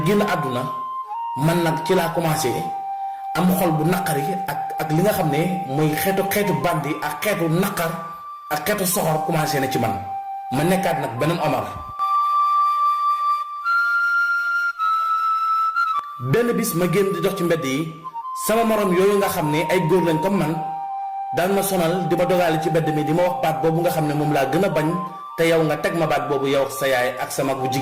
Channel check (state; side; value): identical; both; correlation 1.00